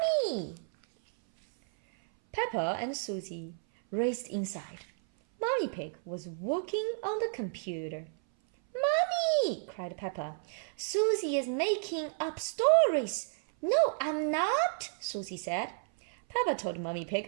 Peppa and Susie raced inside. Mummy Pig was working on the computer. "Mommy!" cried Peppa. "Susie is making up stories." "No, I'm not," Susie said. Peppa told Mummy Pig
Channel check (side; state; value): left; silent; 56 dB below the other